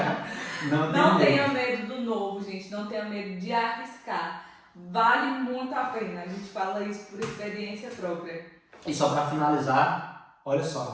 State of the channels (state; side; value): identical; both; correlation 1.00